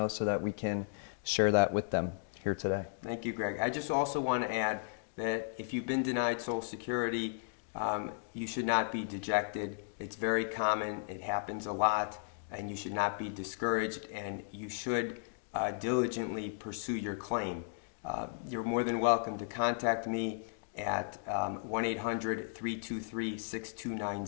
so that we can share that with them here today. Thank you, Greg. I just also want to add that if you've been denied Social Security, you should not be dejected. It's very common. It happens a lot, and you should not be discouraged, and you should diligently pursue your claim. You're more than welcome to contact me at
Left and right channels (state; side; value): silent; right; digital silence